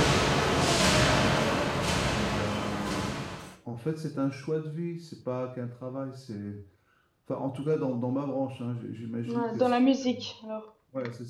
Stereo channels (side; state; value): both; identical; correlation 1.00